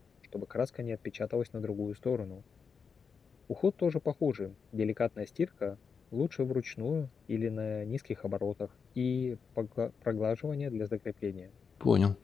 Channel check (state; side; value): quieter; right; 5.8 dB